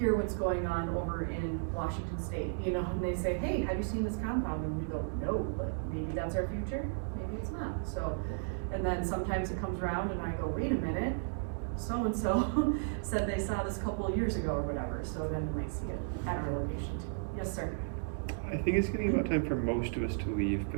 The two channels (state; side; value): silent; left; digital silence